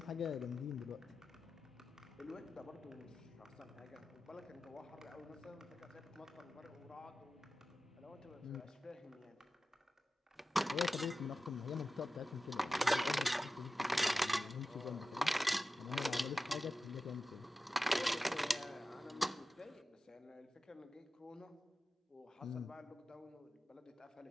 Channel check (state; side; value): normal; both; correlation 0.94